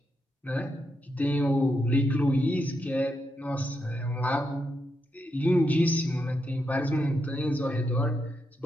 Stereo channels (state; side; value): normal; both; correlation 0.83